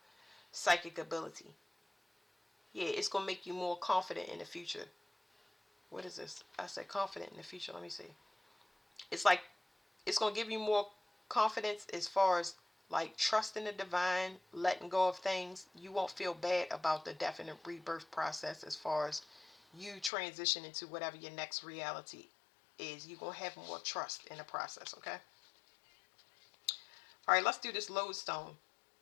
psychic ability. Yeah, it's going to make you more confident in the future. What is this? I said confident in the future. Let me see. It's like, it's going to give you more confidence as far as like trusting the divine, letting go of things, you won't feel bad about the definite rebirth process as far as you transition into whatever your next reality is. You're going to have more trust in the process, okay? All right, let's do this lodestone.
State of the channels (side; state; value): right; drops out; at 20.1 s